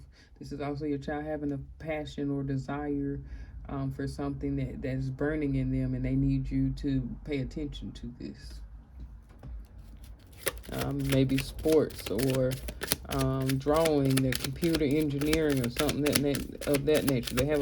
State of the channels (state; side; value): identical; both; correlation 1.00